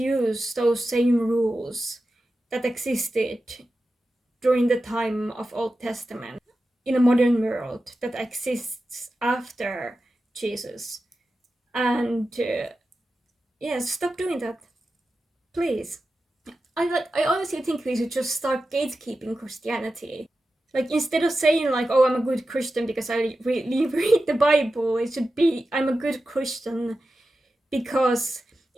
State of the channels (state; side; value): normal; both; correlation 0.92